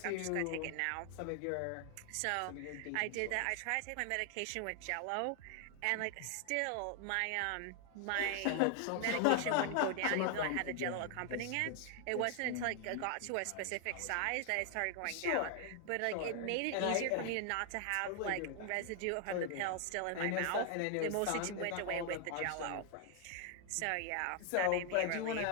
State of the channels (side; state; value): both; different; correlation 0.00